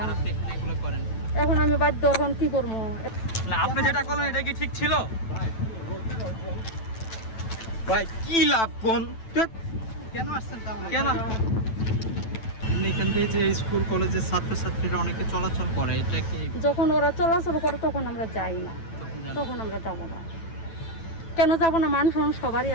আর আপনি এখানে এগুলো করেন? এখন আমি বাধ্য, এখন কি করবো? না, আপনি যেটা করলেন এটা কি ঠিক ছিল? ভাই কি লাভ কোন? কেন আসছেন তাহলে? কেন এখান দিয়ে যে স্কুল কলেজের ছাত্রছাত্রীরা অনেকে চলাচল করে, এটা কি যখন ওরা চলাচল করে তখন আমরা যাই না, তখন আমরা যাবো না। কেন যাবো না? মানুষ সবারই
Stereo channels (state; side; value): late; right; 9.0 ms